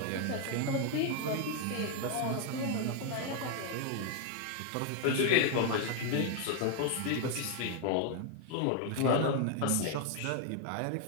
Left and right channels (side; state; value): both; different; correlation 0.01